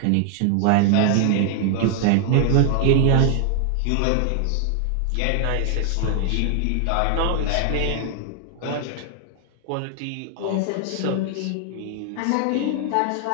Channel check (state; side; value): different; both; correlation 0.00